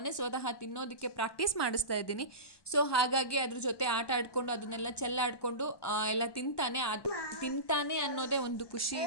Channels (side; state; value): right; late; 1.1 ms